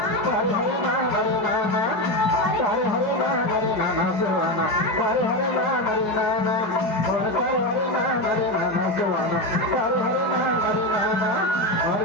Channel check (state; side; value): late; right; 4.8 ms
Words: तारे हरे नाम हरे नाना तारे हरे नाम हरे नाना सुहाना तारे हरे नाम हरे नाना और तारे हरे नाम हरे नाना सुहाना तारे हरे नाम हरे नाना और